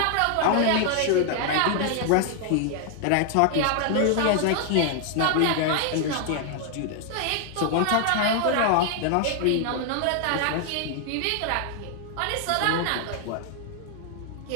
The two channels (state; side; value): different; both; correlation 0.00